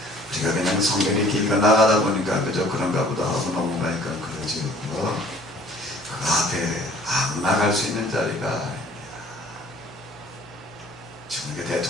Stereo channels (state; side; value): normal; both; correlation 0.54